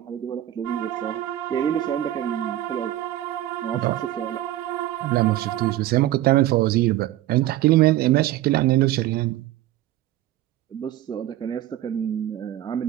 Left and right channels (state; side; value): quieter; left; 14.0 dB